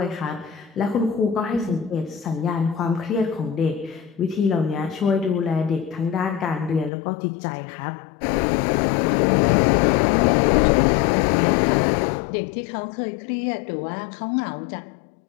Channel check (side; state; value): right; drops out; at 6.9 s